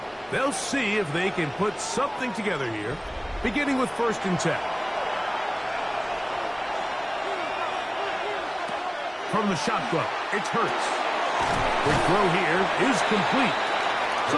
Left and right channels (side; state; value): both; identical; correlation 1.00